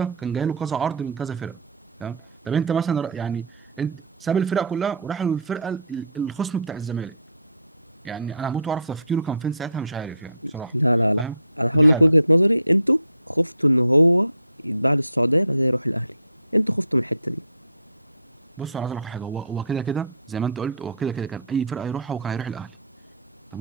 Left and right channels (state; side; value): inverted; both; correlation -0.55